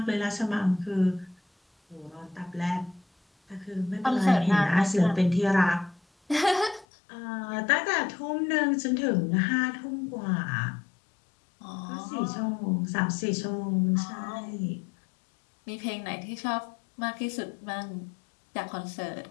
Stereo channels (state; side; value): drops out; right; at 6.9 s